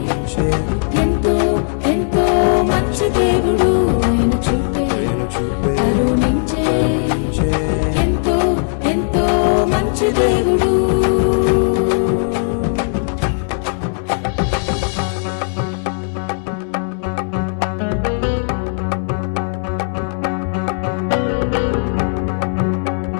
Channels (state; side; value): silent; right; 68 dB below the other